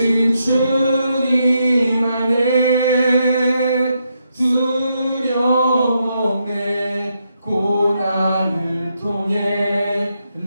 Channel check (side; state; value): both; inverted; correlation -0.80